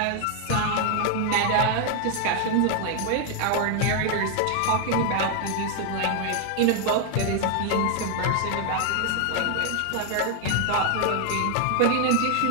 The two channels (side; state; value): both; different; correlation 0.00